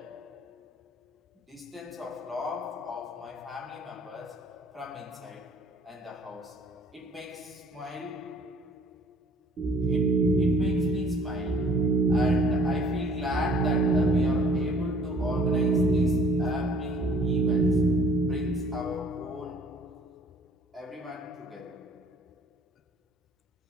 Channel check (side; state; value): both; normal; correlation 0.55